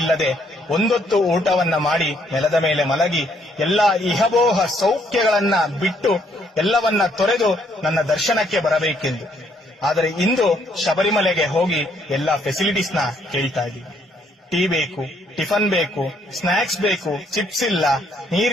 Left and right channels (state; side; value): normal; both; correlation 0.69